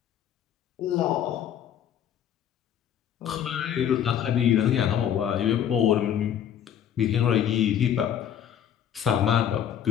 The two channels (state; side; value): quieter; right; 9.7 dB